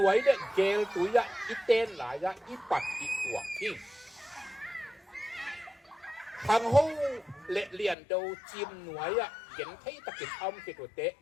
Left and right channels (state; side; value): drops out; right; at 8.0 s